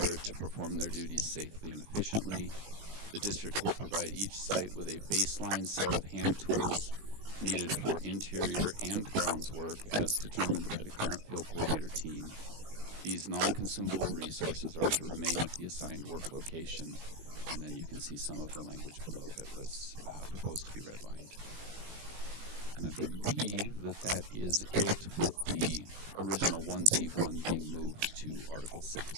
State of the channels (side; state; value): left; late; 18 ms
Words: to perform their duties safely and efficiently. The district will provide each site with a baseline set of hand tools needed for interior and grounds work as determined by the current field coordinator team. These non-consumable resources are to remain at the assigned work location, and then you can see some of the language below that was proposed to be redlined. And I believe that that is it, with the original 1Z1 being moved to Article